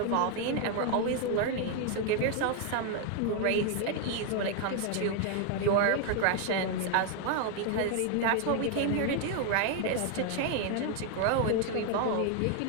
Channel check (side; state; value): both; different; correlation 0.00